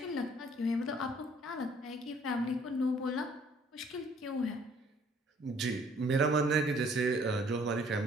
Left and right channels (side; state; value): both; normal; correlation 0.60